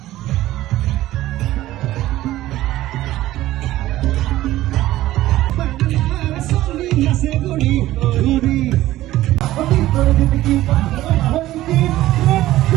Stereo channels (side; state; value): left; quieter; 15.4 dB